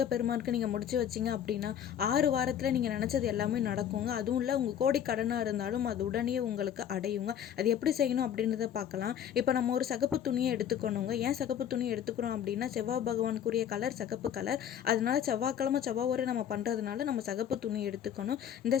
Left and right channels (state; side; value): quieter; right; 9.5 dB